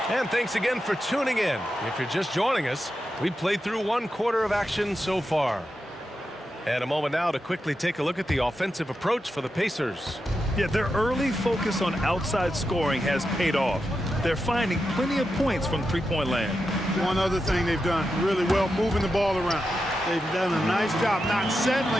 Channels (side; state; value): both; normal; correlation 0.88